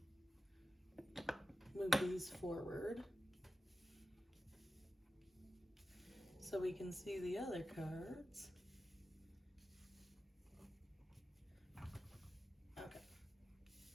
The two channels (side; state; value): both; normal; correlation 0.93